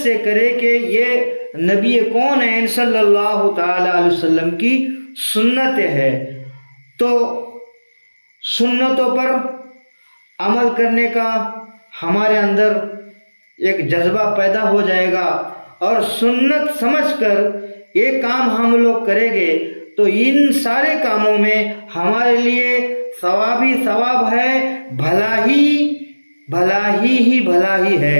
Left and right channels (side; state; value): both; inverted; correlation -1.00